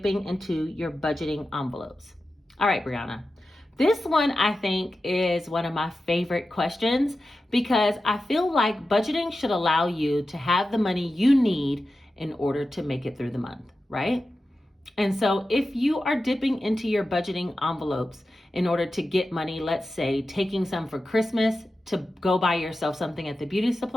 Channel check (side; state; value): both; normal; correlation 0.92